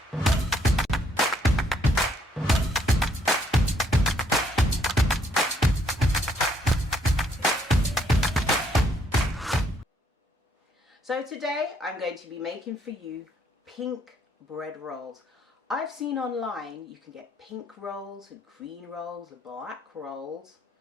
So today I'm going to be making for you pink bread rolls. I've seen online you can get pink rolls and green rolls and black rolls,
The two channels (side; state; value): both; normal; correlation 0.69